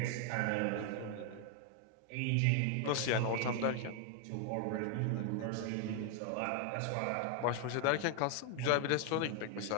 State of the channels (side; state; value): both; different; correlation 0.00